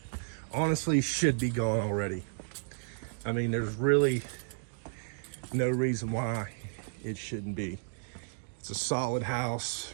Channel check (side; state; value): left; silent; digital silence